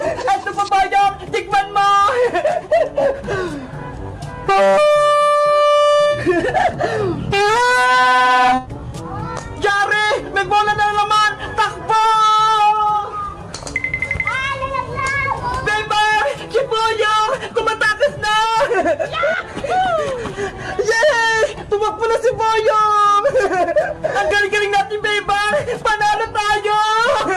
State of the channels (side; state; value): both; identical; correlation 1.00